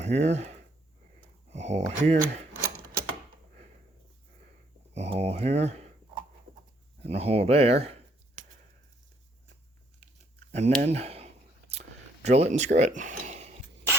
a hole here, a hole here, and a hole there, and then drill it and screw it.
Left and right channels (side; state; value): both; normal; correlation 0.68